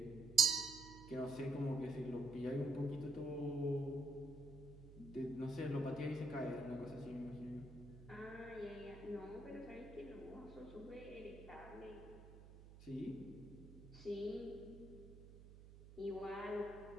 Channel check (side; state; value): right; noise; hum, 16 dB below the sound